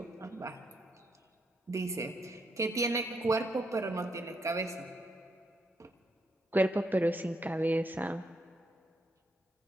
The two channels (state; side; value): normal; both; correlation 0.78